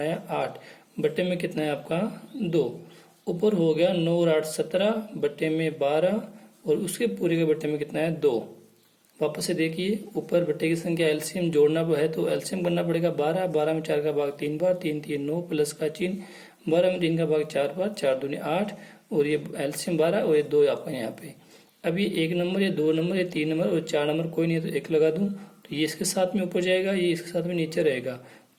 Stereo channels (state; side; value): identical; both; correlation 1.00